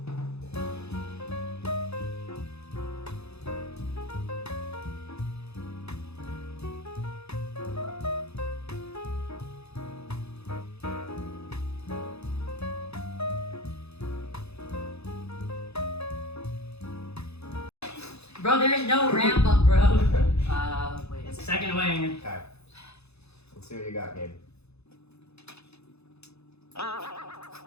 Bro, there is no ramp up, bro. Wait. It's second wing. Okay. Let's see what you got, Gabe.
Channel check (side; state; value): right; late; 0.79 ms